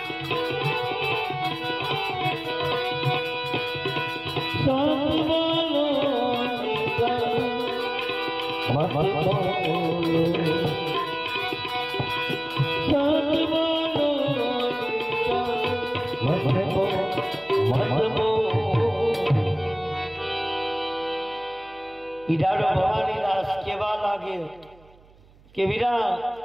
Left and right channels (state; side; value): noise; right; hum, 27 dB below the sound